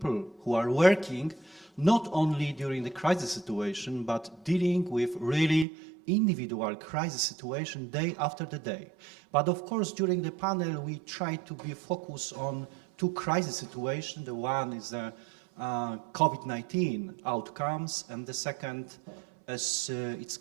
who are working not only during the crisis situation, but dealing with really individual crisis situation day after the day. But of course, during the panel, we try to be focused on two crisis situations. The one is the COVID-19 outcomes, and the second, as it's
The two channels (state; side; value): drops out; left; at 5.7 s